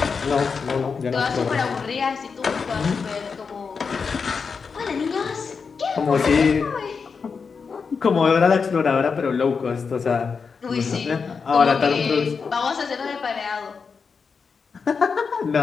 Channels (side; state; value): right; quieter; 5.4 dB